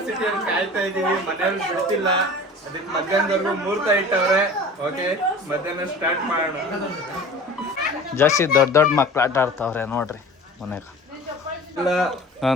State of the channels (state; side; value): normal; both; correlation 0.40